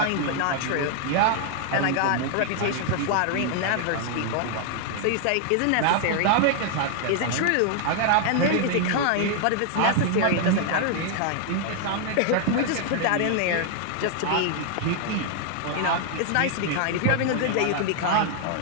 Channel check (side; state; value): both; different; correlation 0.00